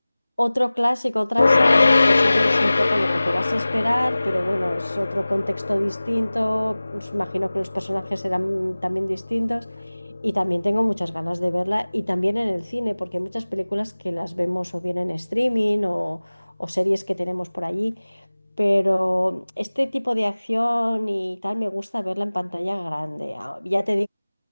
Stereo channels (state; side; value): inverted; both; correlation -0.99